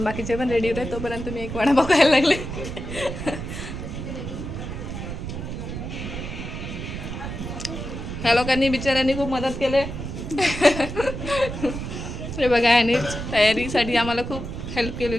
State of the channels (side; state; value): right; noise; rumble, 7 dB below the sound